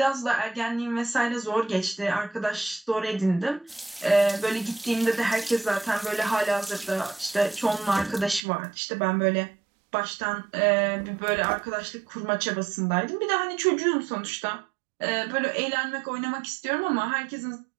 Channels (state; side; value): drops out; left; at 8.5 s